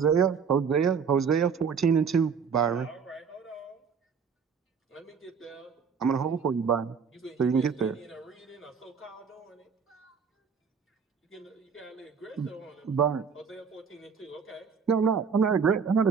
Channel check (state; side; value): quieter; left; 6.2 dB